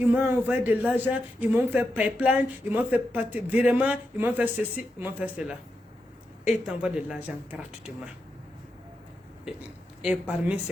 m'ont envoyé de l'argent, ils m'ont fait pipeline, ils m'ont fait virement, ils m'ont fait ceci, ils m'ont fait cela. Et ils t'envoient de l'argent gratuitement. Et parmi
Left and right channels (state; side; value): normal; both; correlation 0.86